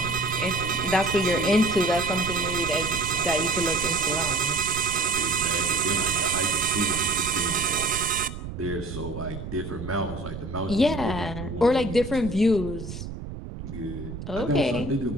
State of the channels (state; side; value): noise; right; rumble, 9 dB below the sound